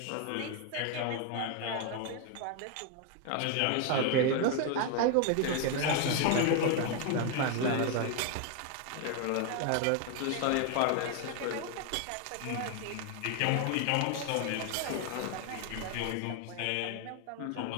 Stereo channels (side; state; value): both; different; correlation 0.00